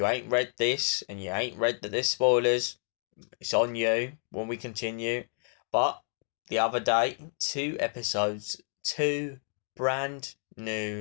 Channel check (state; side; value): silent; right; digital silence